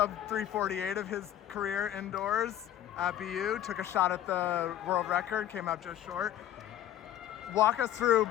348 of his career indoors at BU. Took a shot at the world record, came out just short. Walk us through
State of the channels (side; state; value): right; quieter; 11.9 dB